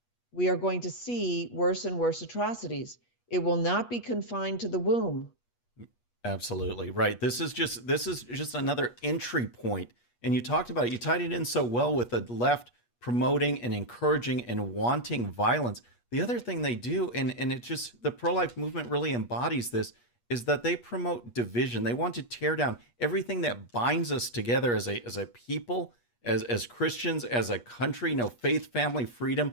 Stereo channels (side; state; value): right; late; 8.4 ms